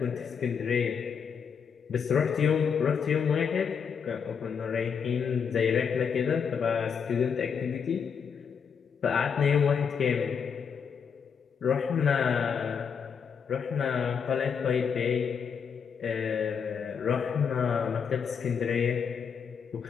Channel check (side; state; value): right; quieter; 6.7 dB